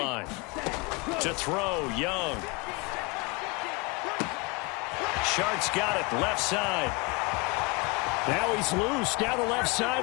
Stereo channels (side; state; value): right; quieter; 26.9 dB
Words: To throw, Young. Shark's got it, left side. Now he's loose down the left